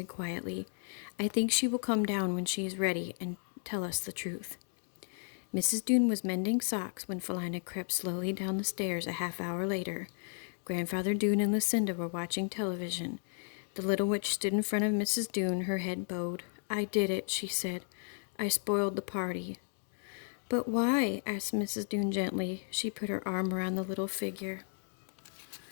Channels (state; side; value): silent; right; 55 dB below the other